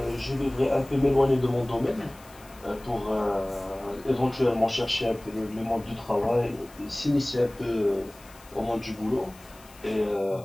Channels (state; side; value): noise; left; hiss, 23 dB below the sound